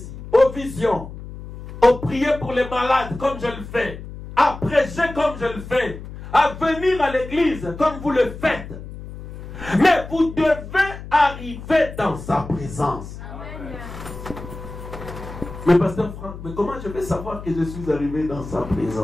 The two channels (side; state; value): left; noise; hum, 12 dB below the sound